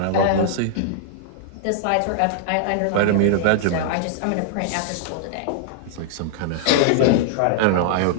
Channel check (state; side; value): different; both; correlation -0.01